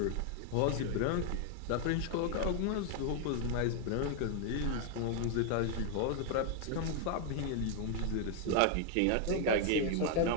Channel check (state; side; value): different; both; correlation 0.00